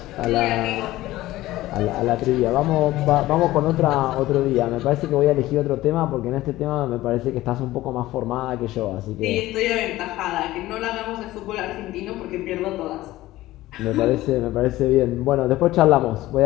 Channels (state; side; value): quieter; right; 16.6 dB